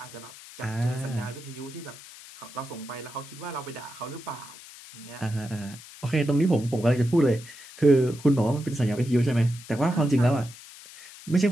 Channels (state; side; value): noise; left; hiss, 17 dB below the sound